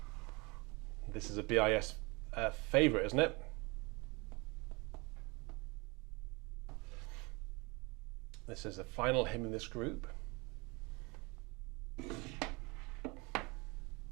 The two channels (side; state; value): left; quieter; 27.0 dB